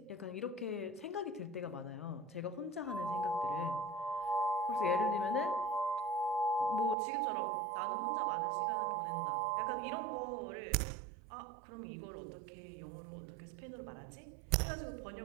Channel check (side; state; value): left; drops out; at 7.0 s